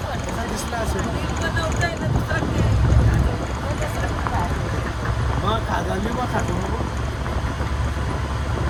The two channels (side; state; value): both; identical; correlation 1.00